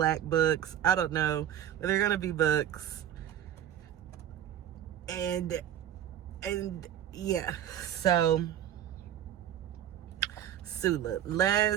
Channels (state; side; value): quieter; left; 10.8 dB